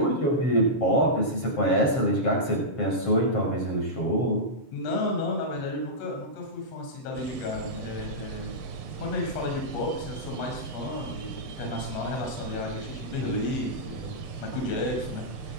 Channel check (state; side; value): late; right; 7.5 ms